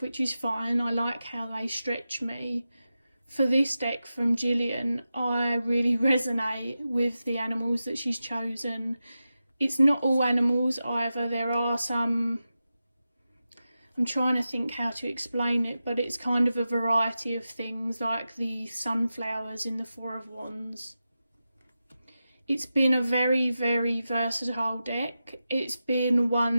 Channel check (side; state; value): both; inverted; correlation -0.92